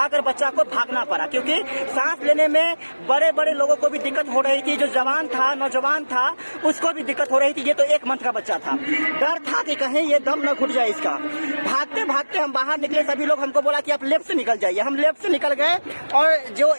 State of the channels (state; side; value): inverted; both; correlation -1.00